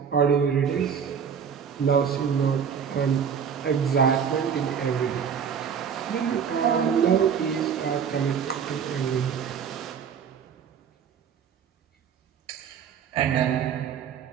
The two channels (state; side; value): quieter; left; 7.3 dB